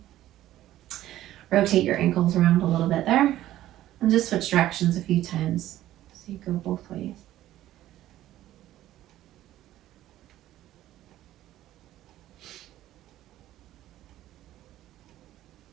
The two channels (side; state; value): left; quieter; 13.9 dB